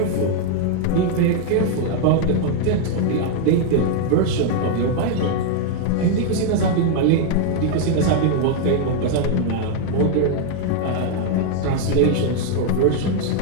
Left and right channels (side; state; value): both; different; correlation 0.00